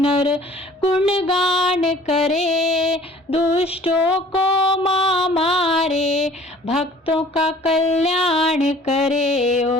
गुणगान करे, दुष्टों को मां मारे भक्तों का कल्याण करे।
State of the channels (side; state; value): both; normal; correlation 0.51